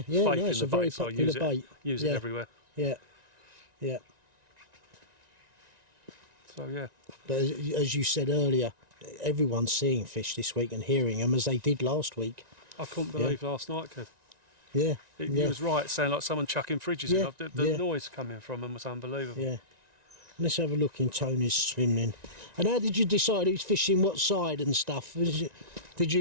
faith no, in it's the a very bait, so I popular use bait. Use Yeah. it everywhere. Yeah, yeah. So yeah. But as you said earlier, everyone's seeing fish this week and hearing them as they did last week. I couldn't believe last night, Kev. Yeah, He was right, sounding like someone chucking fridges Yeah, in. The yeah. noise coming from them was unbelievable. yeah. Let's have a look in Tony's swimming. And how did you decide who's fishing what side and stuff? Did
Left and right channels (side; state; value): left; late; 1.9 ms